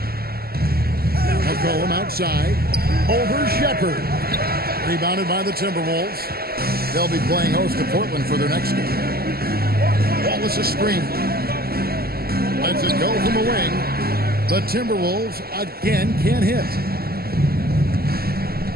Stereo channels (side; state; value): left; late; 0.45 ms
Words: McCollum outside. Over Shepherd. Rebounded by the Timberwolves. They'll be playing host to Portland for their next game. Wallace a screen. Lets it go from the wing. The Timberwolves again can't hit.